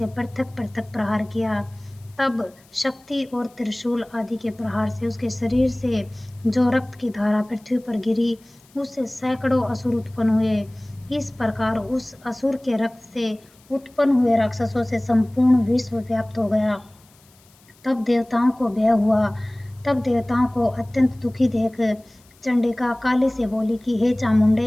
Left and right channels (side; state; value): left; noise; hiss, 30 dB below the sound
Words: पृथक पृथक प्रहार किया। तब शक्ति और त्रिशूल आदि के प्रहार से उसके शरीर से जो रक्त की धारा पृथ्वी पर गिरी उससे सैकड़ों असुर उत्पन्न हुए। इस प्रकार उस असुर के रक्त से उत्पन्न हुए राक्षसों से संपूर्ण विश्व व्याप्त हो गया। तब देवताओं को भय हुआ। तब देवताओं को अत्यंत दुखी देख चंडिका काली से बोली कि हे